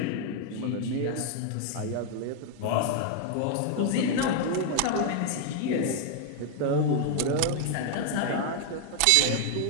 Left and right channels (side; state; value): both; different; correlation 0.00